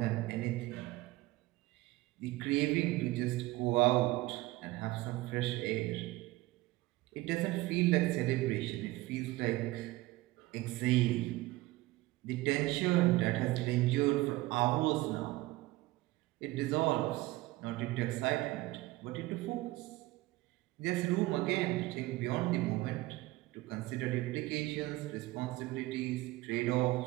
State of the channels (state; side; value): quieter; left; 19.3 dB